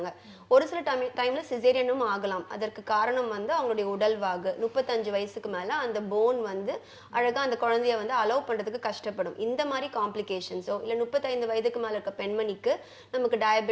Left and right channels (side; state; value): both; identical; correlation 1.00